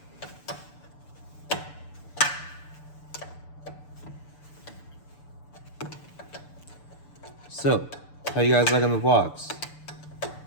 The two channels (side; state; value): right; late; 6.9 ms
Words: So, how you guys liking the vlogs?